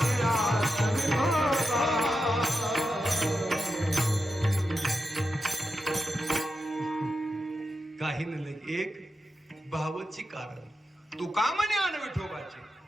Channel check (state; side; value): normal; both; correlation 0.89